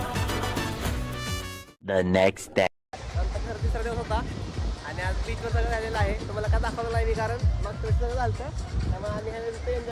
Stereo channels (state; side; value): identical; both; correlation 1.00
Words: The next day. आमचा खरं 3रा दिवस होता आणि आज बीचवर सगळं झालेलं आहे. तुम्हाला काय दाखवलं नाही मी कारण मग थोडं सगळं झालं त्यामुळे आम्ही ह्या